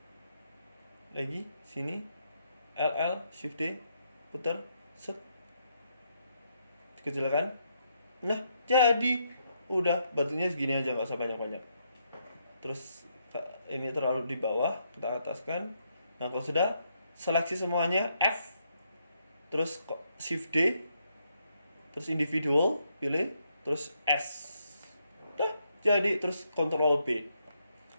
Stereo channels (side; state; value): both; inverted; correlation -0.77